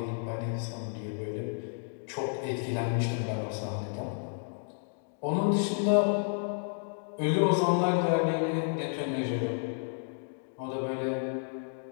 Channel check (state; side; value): silent; right; digital silence